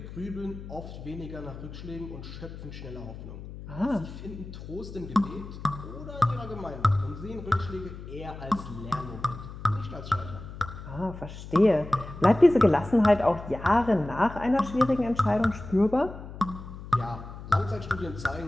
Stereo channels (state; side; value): noise; left; hum, 12 dB below the sound